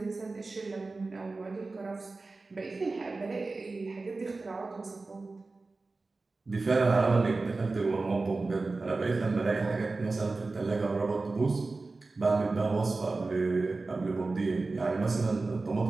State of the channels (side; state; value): left; quieter; 3.6 dB